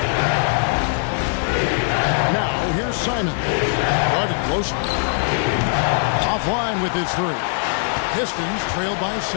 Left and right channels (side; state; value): right; silent; digital silence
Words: Now, here's Simon. Guarded close. Offline with his 3. Pistons trail by